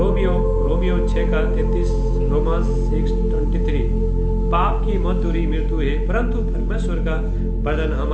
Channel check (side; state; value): both; identical; correlation 1.00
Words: 6:33, Romans 6:23, पाप की मजदूरी मृत्यु है, परंतु परमेश्वर का वरदान